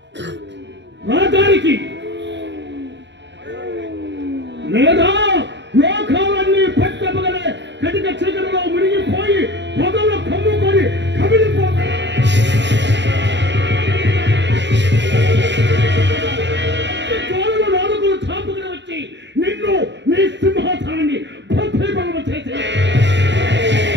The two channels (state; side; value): late; left; 0.52 ms